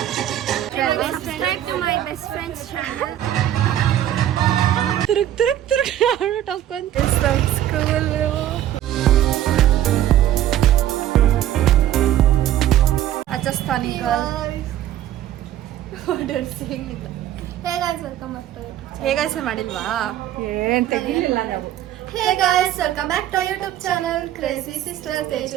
Subscribe to my best friend's channel. ತಿರುಗ್ ಅವಳು ಟೊಕ್ಕೊಂತ ಸ್ಕೂಲ್ ರಾಜಸ್ಥಾನಿ ಹೇಗಾಯ್ಸ ಮಾಡಿಲ್ವಾ ಏನ್ ತೆಗಿಲಿಲ್ಲ ನಾವು. Hey guys, welcome back to our YouTube channel Crazy Sisters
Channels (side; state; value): left; quieter; 12.1 dB